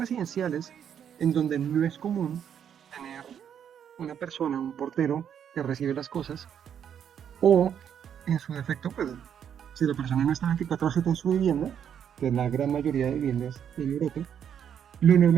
en donde no es común tener una persona, un portero que recibe las cosas, o en su defecto, pues si la persona no está 24/7 en su vivienda, que es la gran mayoría de viviendas en Europa, lo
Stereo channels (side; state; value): left; quieter; 8.7 dB